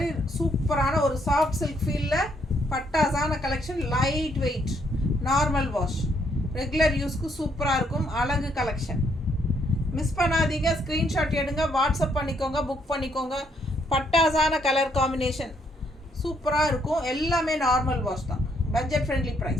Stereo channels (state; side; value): normal; both; correlation 0.72